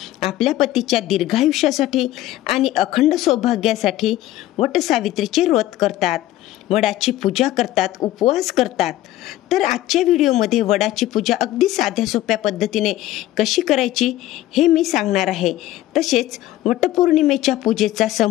आपल्या पतीच्या दीर्घायुष्यासाठी आणि अखंड सौभाग्यासाठी वटसावित्रीचे व्रत करतात, वडाची पूजा करतात, उपवास करतात। तर आजच्या व्हिडिओमध्ये वडाची पूजा अगदी साध्या सोप्या पद्धतीने कशी करायची हे मी सांगणार आहे। तसेच वटपौर्णिमेच्या पूजेचा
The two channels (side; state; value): right; quieter; 14.9 dB